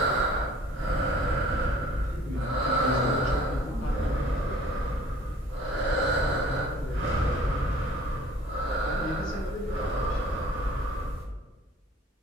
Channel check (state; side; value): normal; both; correlation 0.52